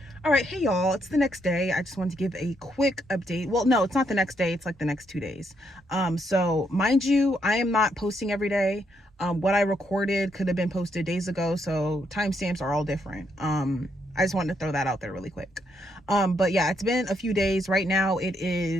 All right, hey y'all, it's the next day. I just wanted to give a quick update. Well, no, it's not the next day, it's like the next 2 days. So mind you, I am not posting every day. What I recorded could have been posted days ago, so timestamps are all different. I just wanted to throw that out there really quick. But yeah, it's been a few days. Right now it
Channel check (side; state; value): both; normal; correlation 0.76